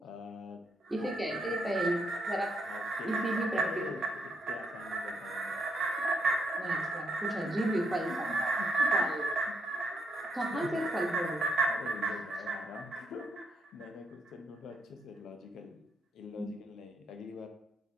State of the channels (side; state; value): both; normal; correlation 0.77